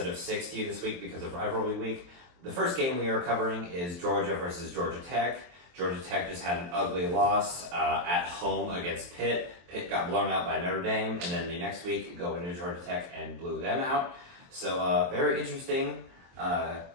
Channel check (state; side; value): late; left; 23 ms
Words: of 6 to you this week because of Rivalry Week. The first game we are covering is Georgia versus Georgia Tech. Georgia Tech just had an ugly loss at home against Pitt. Pitt got blown out by Notre Dame, and then the next week go into Georgia Tech and blew them out. So very interesting